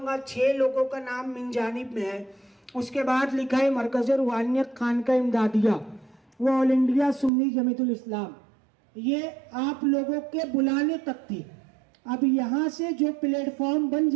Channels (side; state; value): left; drops out; at 7.3 s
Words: 6 लोगों का नाम मिन जानिब में है, उसके बाद लिखा है मरकज़ रूहानियत खानका इमदादिया, वो ऑल इंडिया सुन्नी जमीयतुल इस्लाम, ये आप लोगों के बुलाने तक थी। अब यहाँ से जो प्लेटफॉर्म बन